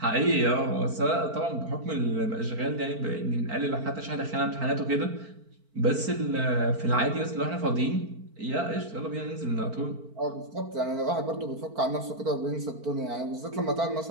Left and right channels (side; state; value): left; late; 4.5 ms